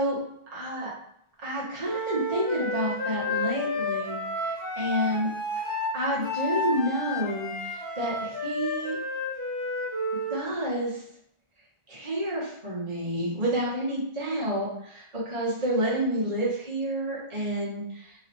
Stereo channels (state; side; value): late; left; 1.4 ms